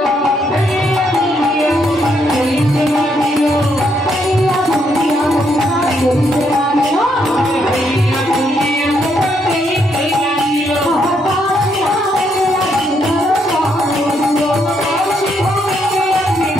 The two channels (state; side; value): normal; both; correlation 0.75